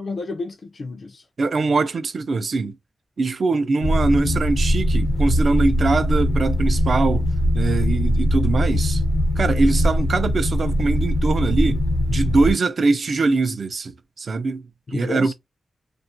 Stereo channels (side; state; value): both; normal; correlation 0.90